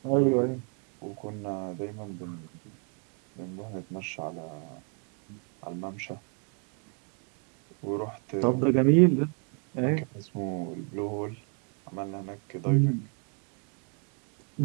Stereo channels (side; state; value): left; quieter; 39.9 dB